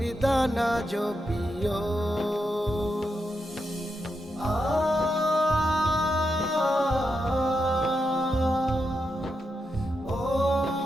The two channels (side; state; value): both; normal; correlation 0.85